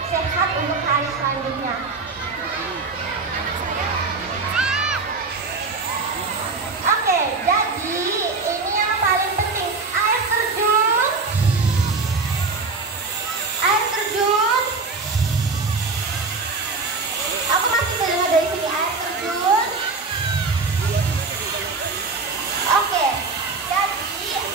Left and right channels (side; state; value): left; quieter; 4.1 dB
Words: sehat untuk hari selanjutnya. Oke, jadi ini yang paling penting, air terjun. Air terjun. Aku masih dengar dari sini air terjun. Oke, jadi